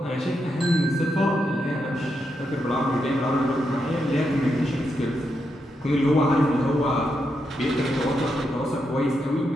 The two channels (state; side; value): normal; both; correlation 0.83